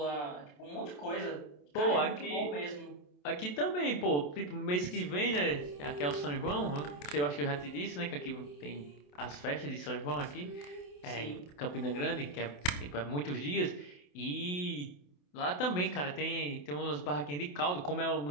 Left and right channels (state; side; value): late; right; 28 ms